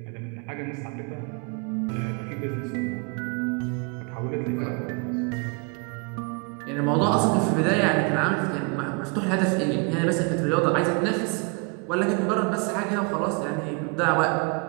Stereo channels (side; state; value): left; quieter; 33.6 dB